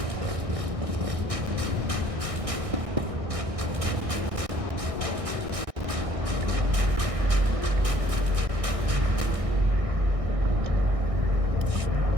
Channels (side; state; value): left; late; 1.6 ms